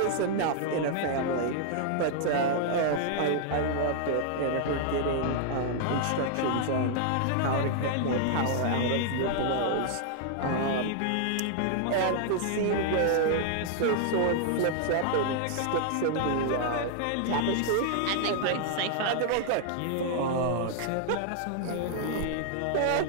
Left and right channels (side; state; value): both; different; correlation -0.01